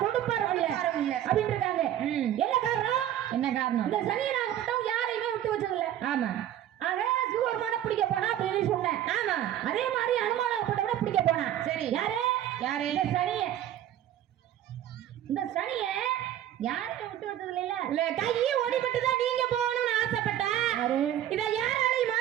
கொடுப்பாரும் இல்ல அப்படின்னு இருக்காங்க. என்ன காரணம்? என்ன காரணம்? இந்த சனியனாகப்பட்டவன் யாரையுமே விட்டு வச்சது இல்ல. ஆமா ஆக சிவபெருமான பிடிக்க போனா அப்படின்னு சொன்னேன். ஆமா அதே மாதிரி அனுமானாகப்பட்டவனை பிடிக்க போனா. சரி யாரு யாரு? இந்த சனிய யாரையும் விட்டு வச்சது இல்ல. இல்ல கையை ஓடிப்பட்டு தான் நீங்க போகணும்னு ஆசைப்பட்டேன். இதை யாராலையும்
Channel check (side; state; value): left; quieter; 11.6 dB